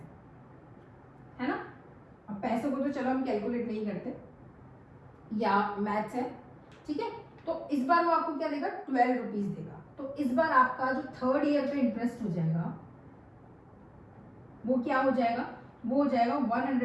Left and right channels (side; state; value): both; identical; correlation 1.00